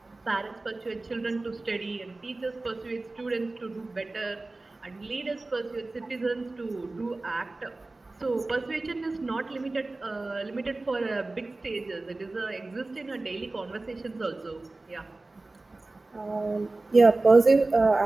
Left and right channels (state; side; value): quieter; left; 3.1 dB